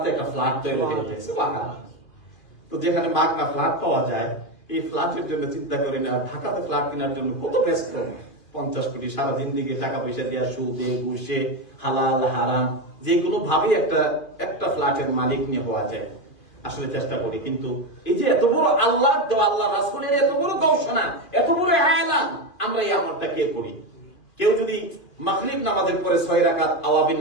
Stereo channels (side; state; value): right; late; 2.4 ms